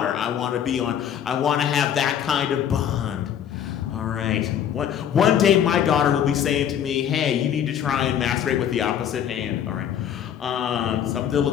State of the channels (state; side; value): quieter; right; 9.4 dB